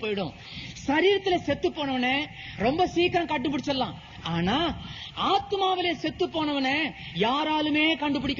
போயிடும். சரீரத்துல செத்து போனவன ரொம்ப சீக்கிரம் கண்டுபிடிச்சிடலாம். ஆனா ஆத்மாவிலே செத்து போனவன யாராலுமே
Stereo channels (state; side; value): identical; both; correlation 1.00